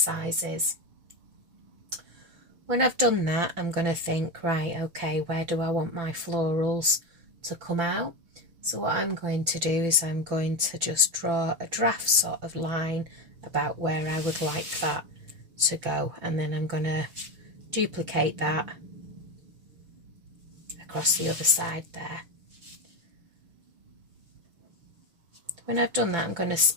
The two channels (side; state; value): left; late; 5.9 ms